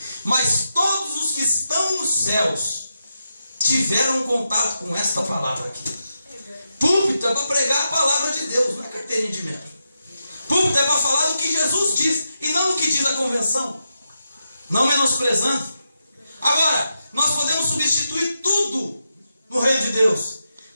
Mas todos os que estão nos céus tiveram contato com esta palavra aqui. Púlpito é para pregar a palavra de Deus, não é carteirinha de membro. Púlpito é para falar do que Jesus diz e não do que diz a convenção. Não menosprezando. Agora, nós podemos substituir tudo no reino de Deus.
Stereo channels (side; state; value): both; inverted; correlation -0.86